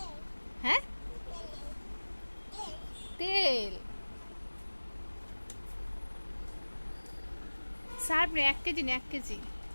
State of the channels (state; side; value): inverted; both; correlation -1.00